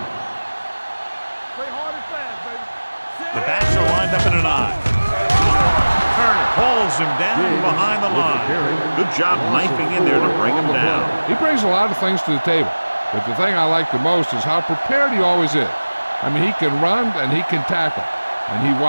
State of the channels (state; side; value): inverted; both; correlation -1.00